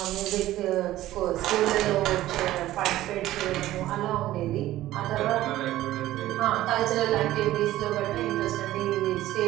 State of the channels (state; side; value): quieter; left; 14.9 dB